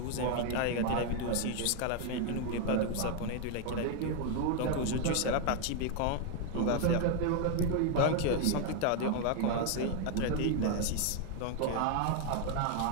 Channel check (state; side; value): different; both; correlation 0.00